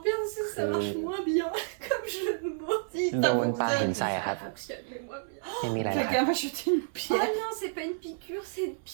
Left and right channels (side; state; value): left; silent; 58 dB below the other